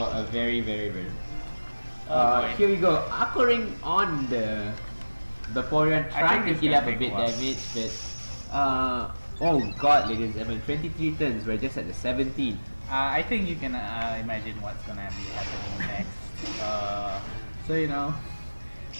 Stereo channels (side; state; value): both; inverted; correlation -1.00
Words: a very. Here we go, Aquaring on the Vaporeon, trying to it's heal gonna up a take bit a while. damage, but oh god, ladies and gentlemen, 23 turns, we're just at the 17. I think you can imagine what's gonna be happening next. So you know,